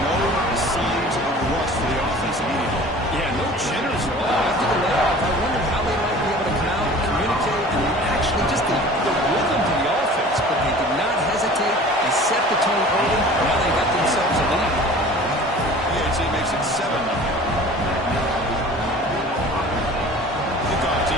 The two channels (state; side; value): normal; both; correlation 0.44